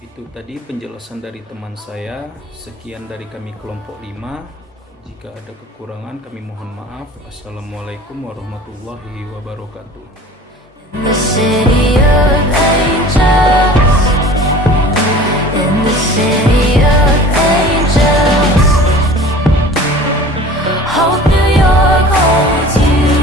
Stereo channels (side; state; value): both; normal; correlation 0.43